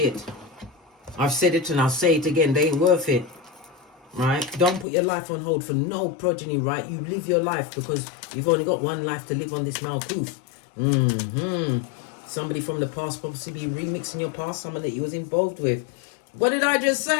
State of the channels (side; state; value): right; drops out; at 4.9 s